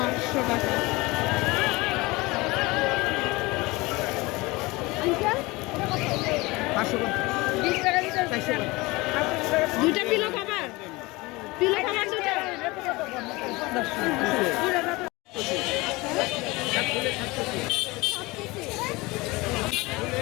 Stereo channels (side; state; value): right; quieter; 22.7 dB